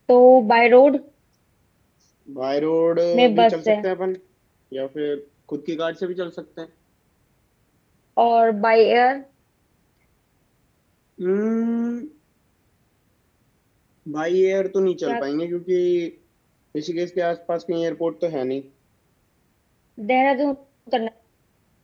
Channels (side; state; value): both; identical; correlation 1.00